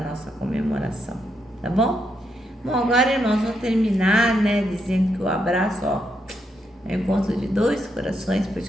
comemoração, tá bom? Bom, agora, irmãos, vou terminar, né, dizendo que o abraço, ó, é o encontro de dois corações, por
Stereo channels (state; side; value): normal; both; correlation 0.80